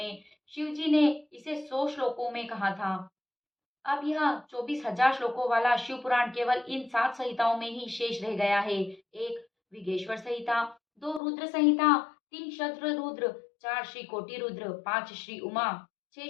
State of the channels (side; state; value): right; drops out; at 11.2 s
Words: शिव जी ने इसे 100 श्लोकों में कहा था। अब यह 24,000 श्लोकों वाला शिव पुराण केवल इन 7 संहिताओं में ही शेष रह गया है। 1 विघेश्वर संहिता, 2 रुद्र संहिता, 3 शद्र रुद्र, 4 श्री कोटि रुद्र, 5 श्री उमा, 6